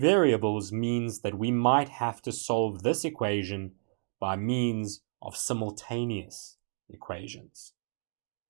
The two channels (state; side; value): silent; left; digital silence